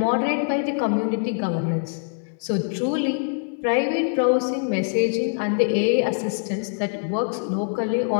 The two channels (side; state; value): right; silent; 63 dB below the other